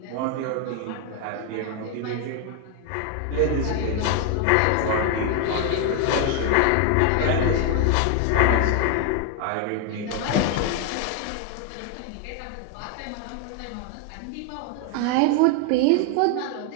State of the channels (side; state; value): both; different; correlation 0.01